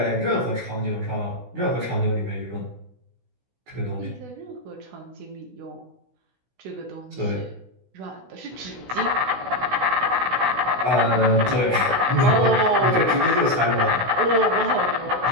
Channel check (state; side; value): late; left; 16 ms